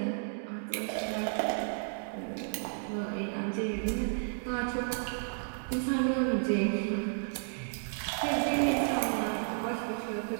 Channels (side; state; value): left; silent; digital silence